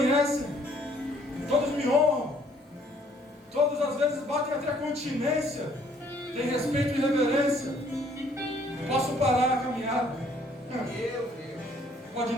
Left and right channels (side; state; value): both; normal; correlation 0.62